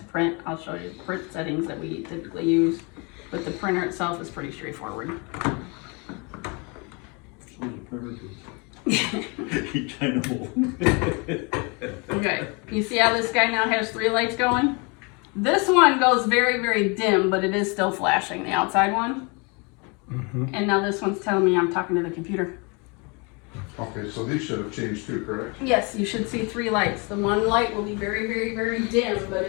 print. I'll show you the print settings that we typically use. But the printer itself is pretty straightforward. So the printer too. I know. Okay, you see how this guy now has 3 lights going? This one goes very, very dim, but it is still flashing, the outside one. And now this one's telling me I'm talking to the computer. Okay, so these should have changed too, correct? Yes, you should see 3 lights. The one light will be very, very, very dim, but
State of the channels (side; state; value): right; quieter; 31.0 dB